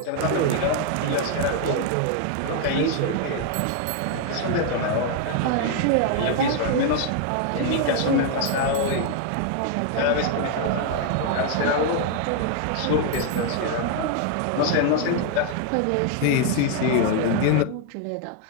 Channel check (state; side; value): different; both; correlation 0.00